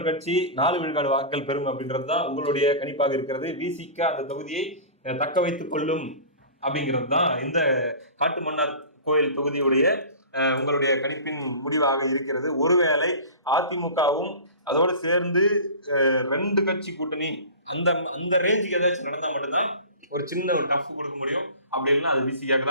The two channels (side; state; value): both; inverted; correlation -0.36